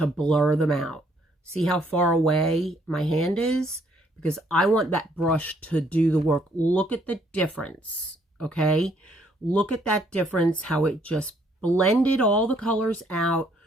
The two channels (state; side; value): normal; both; correlation 0.67